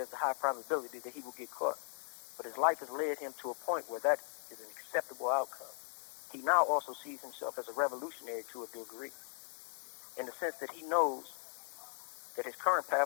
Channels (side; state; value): right; silent; 52 dB below the other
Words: a high probability that he will get caught. But his life has led him to a point where that is an acceptable outcome. He now also sees himself as a revolutionary to a degree, in the sense that he knows that his current